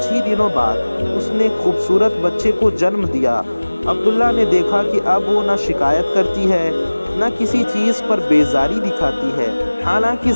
ہی دنوں بعد اس نے ایک خوبصورت بچے کو جنم دیا۔ عبداللہ نے دیکھا کہ اب وہ نہ شکایت کرتی ہے، نہ کسی چیز پر بیزاری دکھاتی ہے۔ حالانکہ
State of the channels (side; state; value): both; inverted; correlation -1.00